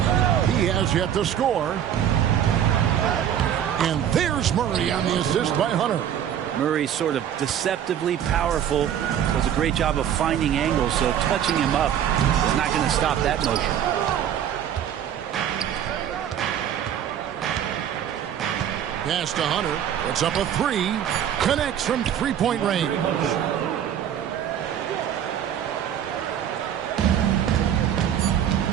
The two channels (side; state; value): left; quieter; 9.7 dB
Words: He has yet to score. And there's Murray on the assist by Hunter. Murray sort of deceptively powerful. Does a great job of finding angles, so touching him up is not going to stop that motion. Pass to Hunter. Puts up a three. Connects from three-point range.